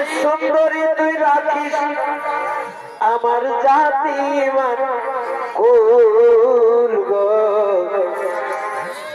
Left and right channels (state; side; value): identical; both; correlation 1.00